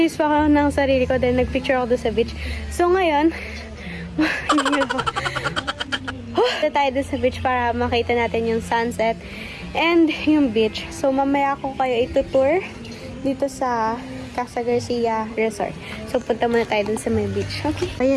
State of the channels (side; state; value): both; identical; correlation 1.00